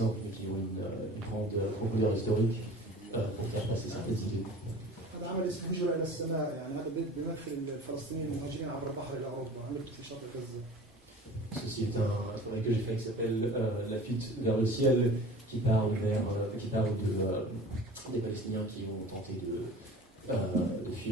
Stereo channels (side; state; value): both; normal; correlation 0.41